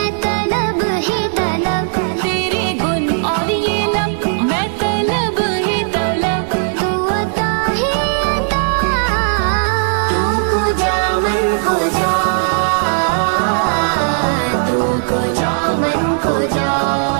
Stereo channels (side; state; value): left; silent; digital silence